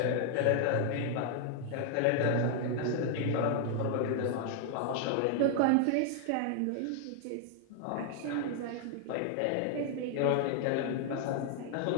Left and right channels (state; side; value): different; both; correlation 0.00